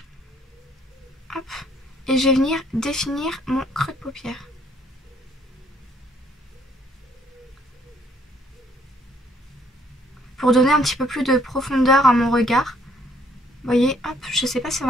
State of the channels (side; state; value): both; normal; correlation 0.65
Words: Hop. Et je vais venir définir mon creux de paupière. Pour donner un petit peu plus de profondeur à mon regard. Vous voyez, hop, je sais pas si on